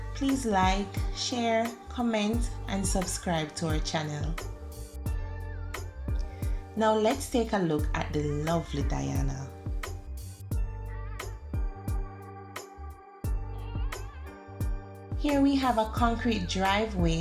please like, share, comment, and subscribe to our channel. Now let's take a look at the lovely Diana. Here we have a concrete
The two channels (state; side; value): identical; both; correlation 1.00